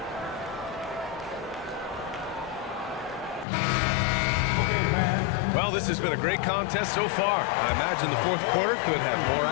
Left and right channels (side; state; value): right; drops out; at 3.5 s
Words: Well, this has been a great contest so far. I imagine the fourth quarter could have more